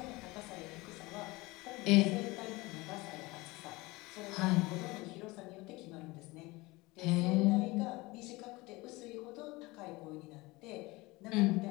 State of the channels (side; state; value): right; quieter; 22.3 dB